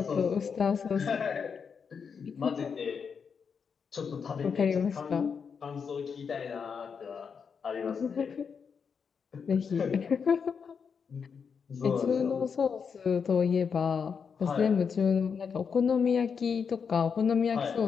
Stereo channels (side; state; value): right; quieter; 6.2 dB